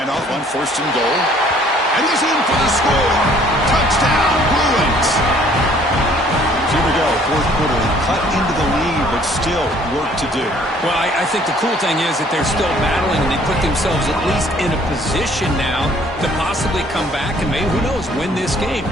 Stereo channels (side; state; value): both; normal; correlation 0.58